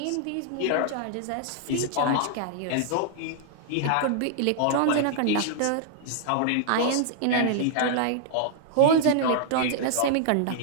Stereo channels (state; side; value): different; both; correlation -0.01